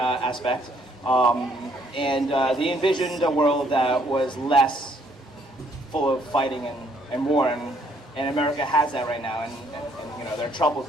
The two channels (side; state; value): both; normal; correlation 0.66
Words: They envisioned a world that was less full of fighting and war, and America has that right now, and they're